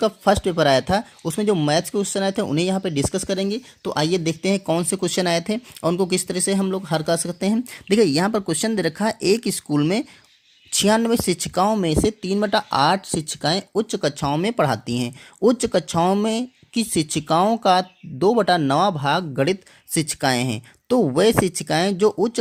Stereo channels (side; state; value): both; identical; correlation 1.00